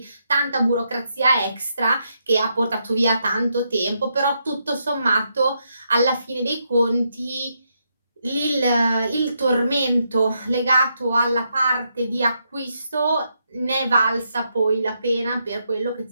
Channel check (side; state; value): both; inverted; correlation -0.80